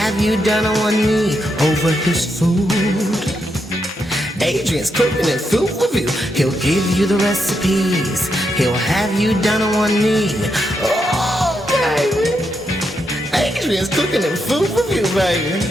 you down on one knee over his food. Adrian's Cooking and Food Review. He'll give you the recipes. He'll have you down on one knee. Oh, baby. Adrian's Cooking and Food Review, baby.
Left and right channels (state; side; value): normal; both; correlation 0.82